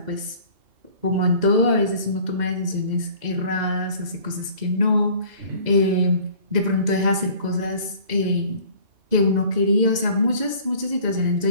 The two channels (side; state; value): left; late; 2.1 ms